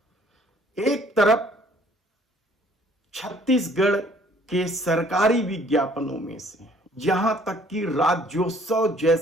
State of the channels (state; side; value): normal; both; correlation 0.58